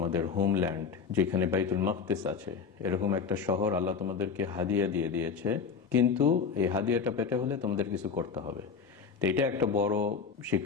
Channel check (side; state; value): right; quieter; 6.0 dB